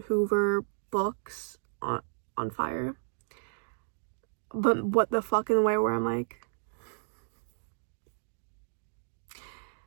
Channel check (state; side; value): silent; left; digital silence